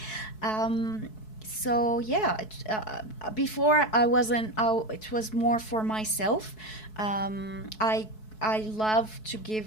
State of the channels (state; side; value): late; right; 4.6 ms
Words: So yeah, before it was more for myself. I love to